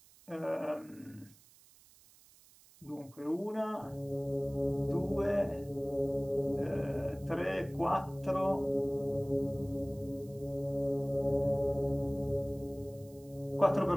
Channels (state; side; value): noise; right; hiss, 26 dB below the sound